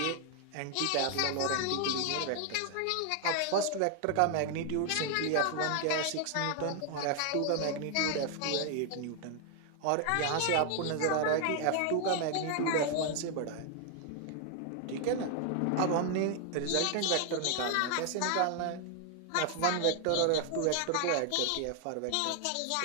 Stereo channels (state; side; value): different; both; correlation 0.00